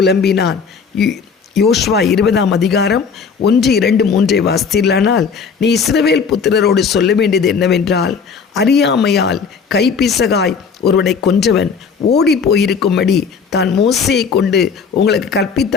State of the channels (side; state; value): right; quieter; 5.8 dB